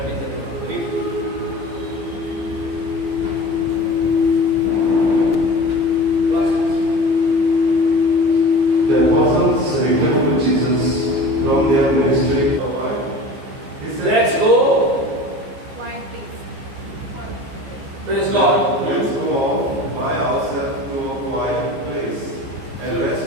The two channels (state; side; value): late; left; 15 ms